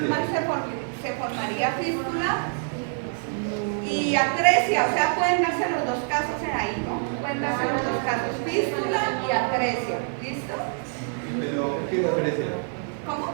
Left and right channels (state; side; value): silent; left; 60 dB below the other